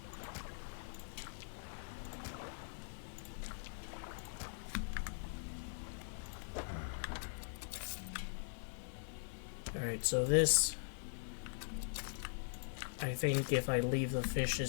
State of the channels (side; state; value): right; silent; digital silence